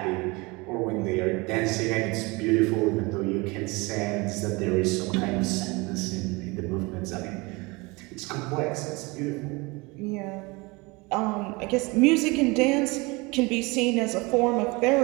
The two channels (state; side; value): quieter; left; 25.4 dB